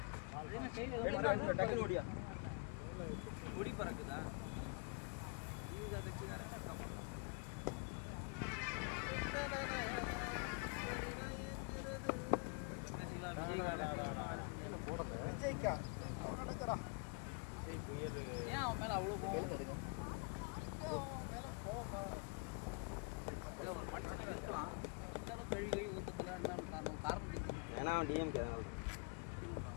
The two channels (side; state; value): right; quieter; 34.1 dB